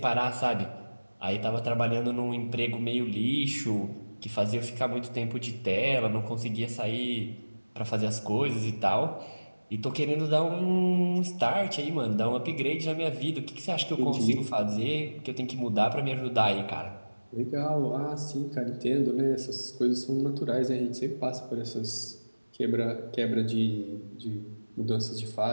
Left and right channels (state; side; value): inverted; both; correlation -1.00